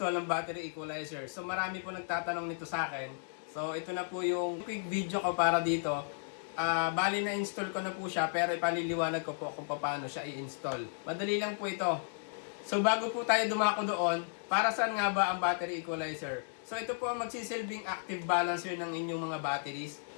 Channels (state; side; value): silent; right; digital silence